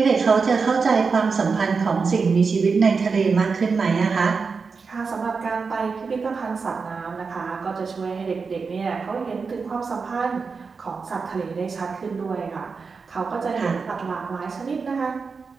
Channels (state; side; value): quieter; left; 4.9 dB